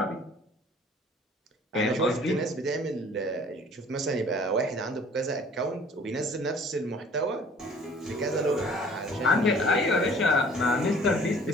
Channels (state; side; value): normal; both; correlation 0.53